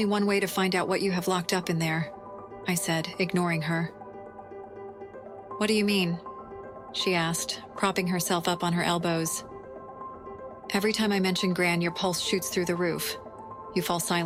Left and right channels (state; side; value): identical; both; correlation 1.00